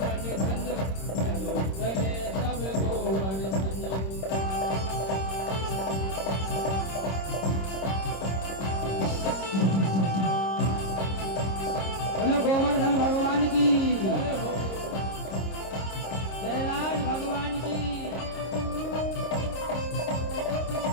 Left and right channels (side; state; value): right; late; 26 ms